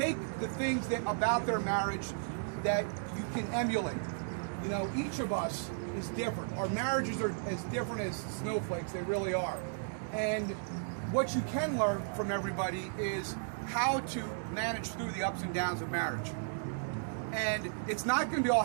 the things that about their marriage that you can emulate. You know, each of us is different. Our marriages are as different as snowflakes, they really are. And what you can learn from everybody is how to manage through the ups and downs of marriage. And it's not going to be all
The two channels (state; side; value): silent; left; digital silence